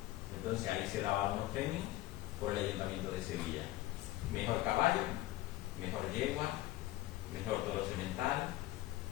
Entonces ahí se daba unos premios por el Ayuntamiento de Sevilla. Mejor caballo, mejor yegua, mejor toro semental,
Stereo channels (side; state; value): right; quieter; 16.4 dB